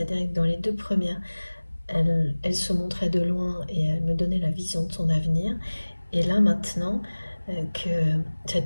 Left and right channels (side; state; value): both; inverted; correlation -1.00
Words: que dans les 2 premières, elle se montrait de loin et elle me donnait la vision de son avenir. Et là maintenant, que